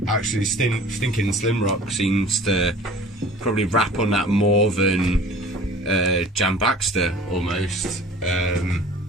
Actually, Stinking Slim Rock seems to probably rap on that more than Jam Baxter almost.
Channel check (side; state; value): both; normal; correlation 0.46